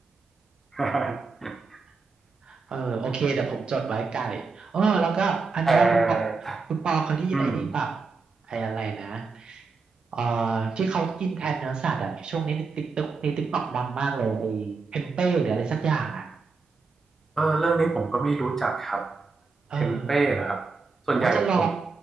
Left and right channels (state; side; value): quieter; left; 4.3 dB